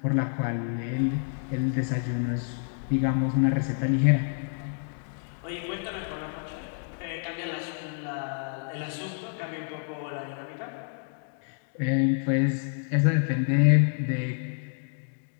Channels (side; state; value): right; silent; 59 dB below the other